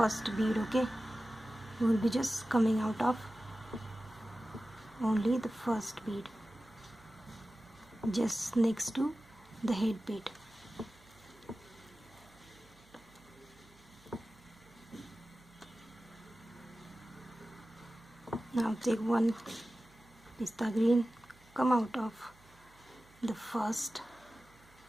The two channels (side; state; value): right; noise; hum, 27 dB below the sound